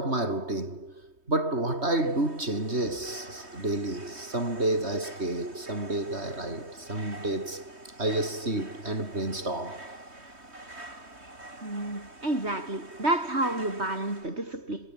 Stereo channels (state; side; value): late; left; 3.2 ms